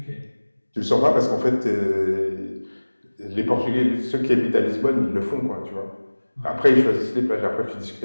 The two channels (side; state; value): both; inverted; correlation -1.00